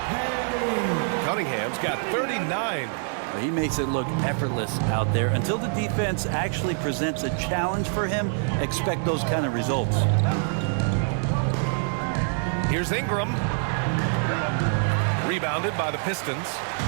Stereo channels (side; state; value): left; silent; 58 dB below the other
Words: Cunningham's got 39. He makes it look effortless out there. Until the defense actually presents a challenge for him, expect those kind of results. Here's Ingram. Rebounded by the Pistons.